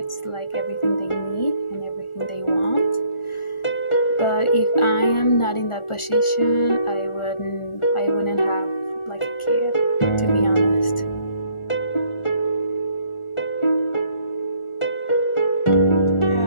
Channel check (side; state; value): right; late; 1.4 ms